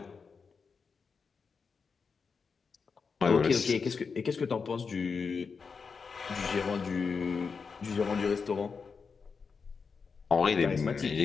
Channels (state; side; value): quieter; right; 5.3 dB